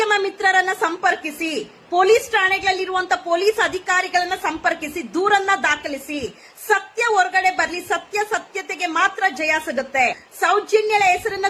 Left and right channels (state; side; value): identical; both; correlation 1.00